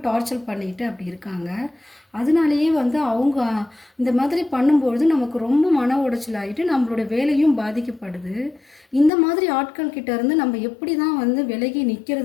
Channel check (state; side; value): drops out; right; at 9.1 s